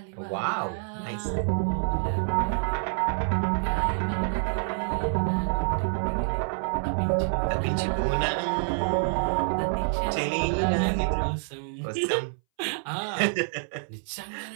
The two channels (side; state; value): left; silent; 60 dB below the other